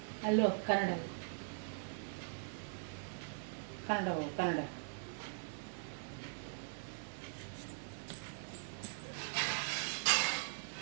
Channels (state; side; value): silent; left; digital silence